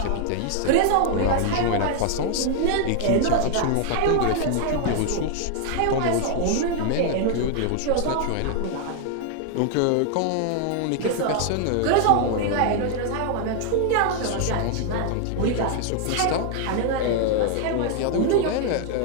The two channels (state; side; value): different; both; correlation 0.00